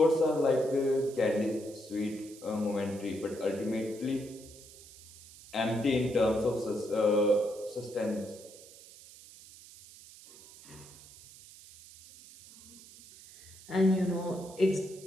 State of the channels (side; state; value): right; noise; hiss, 20 dB below the sound